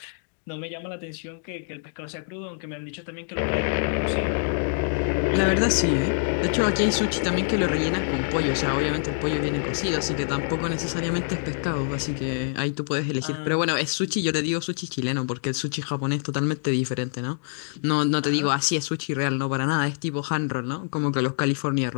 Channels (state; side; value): silent; right; digital silence